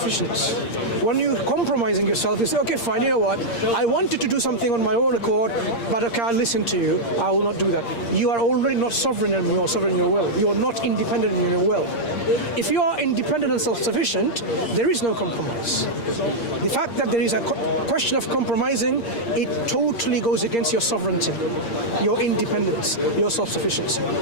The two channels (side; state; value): right; late; 8.6 ms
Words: When you're compromising yourself, you say, okay, fine, you know what? I wanted to do something on my own accord, but okay, I'll listen to you. I will not do that. You are already not sovereign in your will. You are not independent in your will. If you are independent and self-sufficient, there is no compromise. The fact that there is a question of compromising, it totally goes against your sovereignty, your independence, your self-sufficiency.